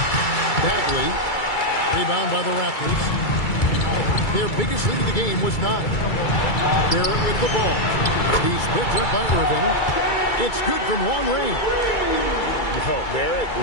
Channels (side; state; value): right; late; 2.3 ms